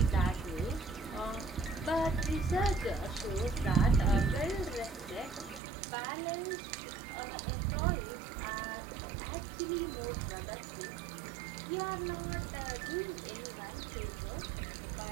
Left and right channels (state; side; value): drops out; left; at 5.6 s